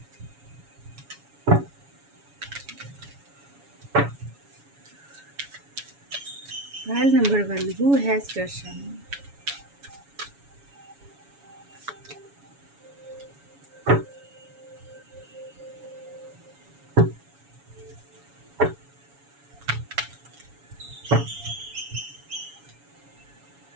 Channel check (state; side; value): late; left; 7.1 ms